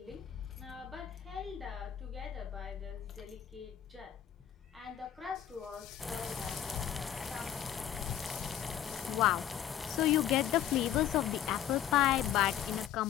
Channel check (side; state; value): right; quieter; 10.6 dB